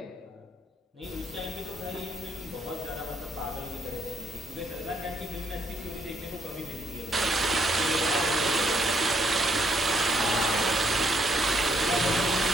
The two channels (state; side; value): normal; both; correlation 0.73